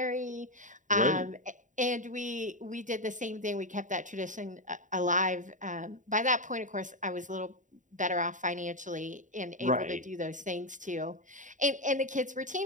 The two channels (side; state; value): left; late; 0.37 ms